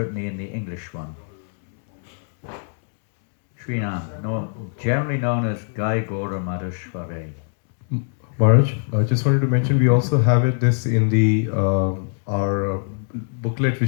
in the English one. Srinam, generally known as Gai Gaura Madhusware. Maharaj, I just wanted to mention we also have this in the our booklet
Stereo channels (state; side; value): silent; right; 64 dB below the other